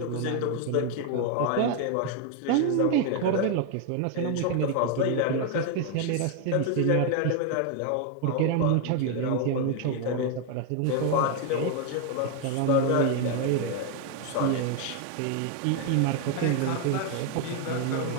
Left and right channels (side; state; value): both; different; correlation 0.01